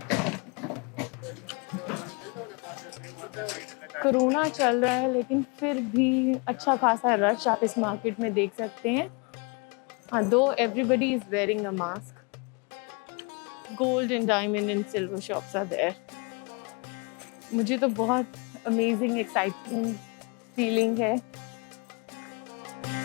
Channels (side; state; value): right; quieter; 31.9 dB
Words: Corona चल रहा है लेकिन फिर भी अच्छा खासा रश आप इस मार्केट में देख सकते हैं। हाँ, दो everybody is wearing a mask. Gold and diamond and silver shops are there. मुझे तो बहुत अमेजिंग एक्साइटिंग फीलिंग है।